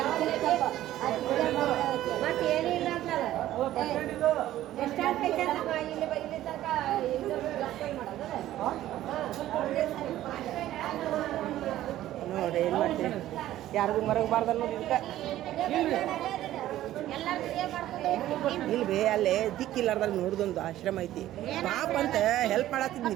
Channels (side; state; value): left; quieter; 13.8 dB